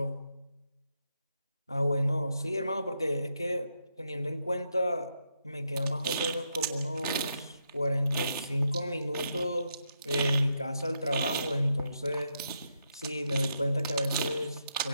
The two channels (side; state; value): both; inverted; correlation -0.81